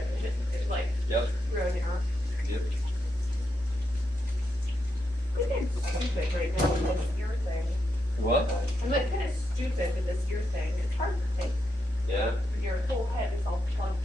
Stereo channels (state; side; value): normal; both; correlation 0.83